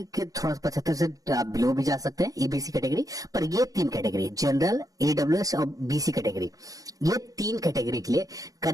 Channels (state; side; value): late; left; 0.17 ms